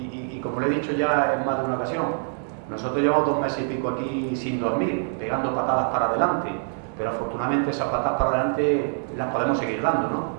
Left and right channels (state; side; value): silent; left; digital silence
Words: como le he dicho ya en más de una ocasión, nosotros llevamos 2 meses y pico aquí sin dormir, pegando patadas para adelante, pero afortunadamente esas patadas para adelante las podemos seguir dando,